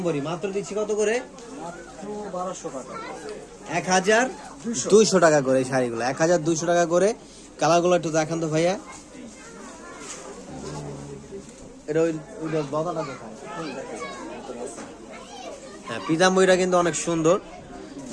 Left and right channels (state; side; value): identical; both; correlation 1.00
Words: মাত্র দিচ্ছি কত করে? 1200 টাকা করে এই শাড়িগুলো, 1200 টাকা করে। কালারগুলো একটু দেখান তো ভাইয়া। এটা ওই বদাটা দেখায়। হ্যাঁ, পিতাম্বরীটা কিন্তু অনেক সুন্দর,